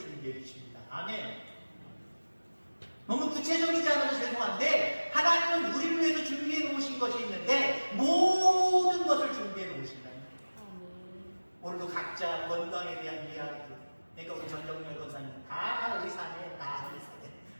주십니다. 아멘. 너무 구체적이지 않아서 죄송한데 하나님은 우리를 위해서 준비해 놓으신 것이 있는데 모든 것을 준비해 놓으신다. 오늘도 각자 건강에 대한 이야기, 그러니까 우리 전정열 권사님 다 의사네, 다 의사네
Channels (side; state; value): both; inverted; correlation -1.00